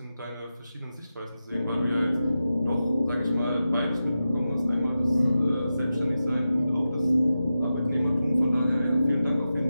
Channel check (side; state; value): both; inverted; correlation -0.92